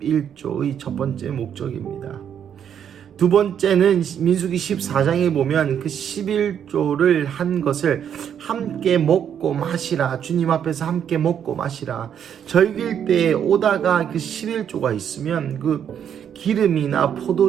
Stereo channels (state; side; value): quieter; left; 8.8 dB